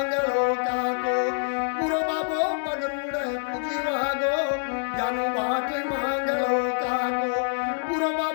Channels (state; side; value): silent; right; 61 dB below the other